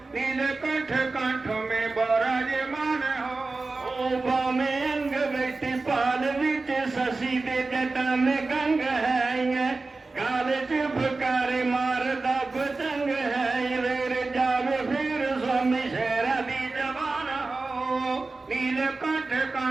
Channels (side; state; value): left; quieter; 3.6 dB